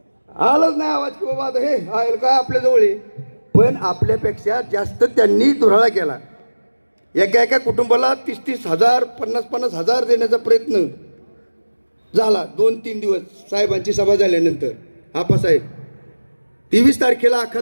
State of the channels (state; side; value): inverted; both; correlation -1.00